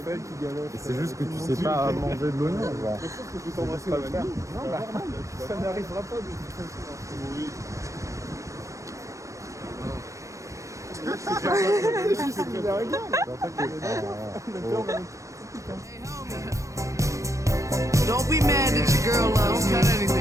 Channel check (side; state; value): left; late; 0.15 ms